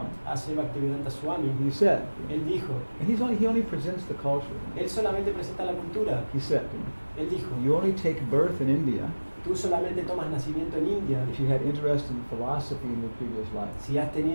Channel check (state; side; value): inverted; both; correlation -1.00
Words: A.C. Bhaktivedanta Swami, he said, él dijo, and he only presents the culture. él solamente presenta la cultura. He said, Él dijo, you only take birth in India tú solamente tomas nacimiento en India if you had interest in philosophy in your previous life. si has